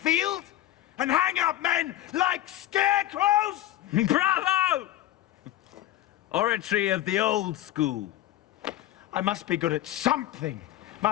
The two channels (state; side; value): quieter; right; 13.9 dB